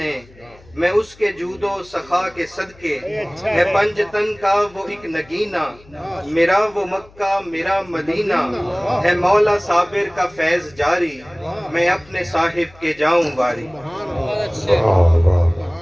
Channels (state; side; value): noise; left; hum, 26 dB below the sound